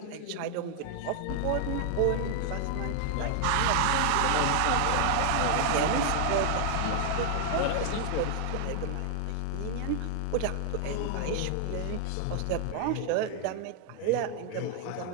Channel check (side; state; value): both; different; correlation 0.00